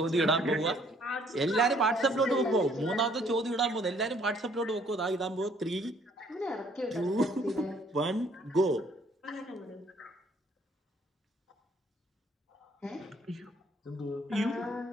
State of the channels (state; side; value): normal; both; correlation 0.62